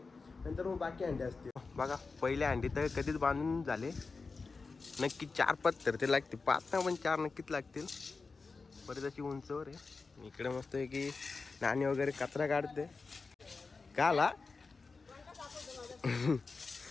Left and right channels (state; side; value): quieter; right; 4.3 dB